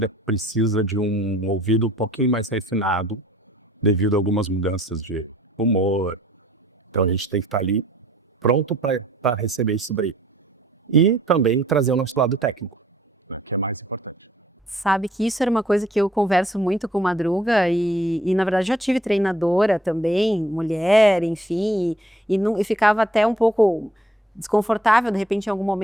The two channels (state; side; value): normal; both; correlation 0.60